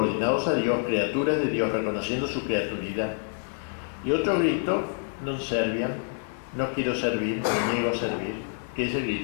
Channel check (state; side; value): silent; right; 60 dB below the other